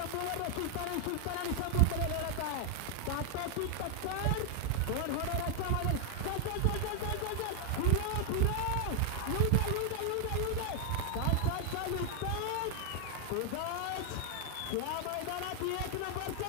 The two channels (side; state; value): both; different; correlation 0.00